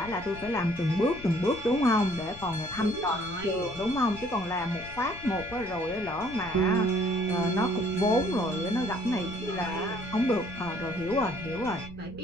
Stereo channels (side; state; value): left; noise; rumble, 17 dB below the sound